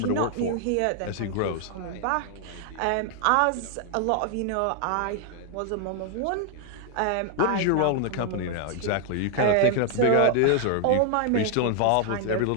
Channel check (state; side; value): different; both; correlation 0.00